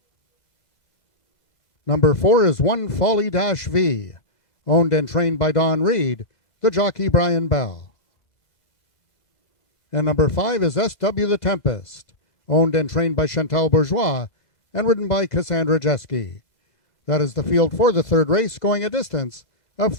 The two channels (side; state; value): right; late; 2.0 ms